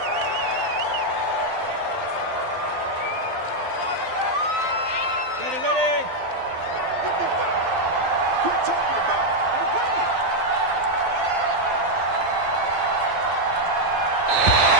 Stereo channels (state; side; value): late; left; 12 ms